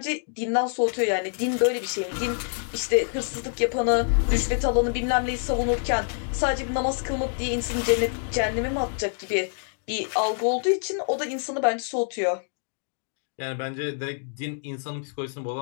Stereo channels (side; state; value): right; silent; 60 dB below the other